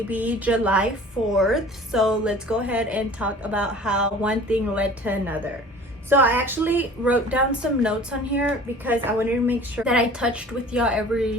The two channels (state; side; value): normal; both; correlation 0.45